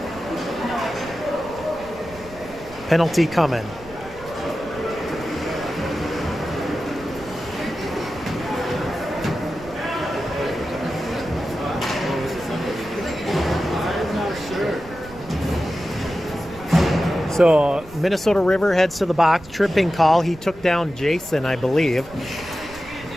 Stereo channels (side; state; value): right; noise; rumble, 19 dB below the sound